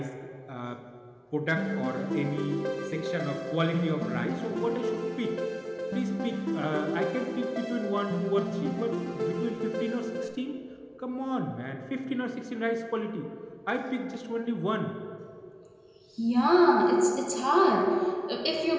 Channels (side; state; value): both; identical; correlation 1.00